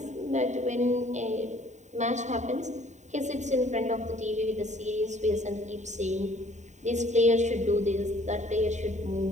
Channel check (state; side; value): late; left; 0.34 ms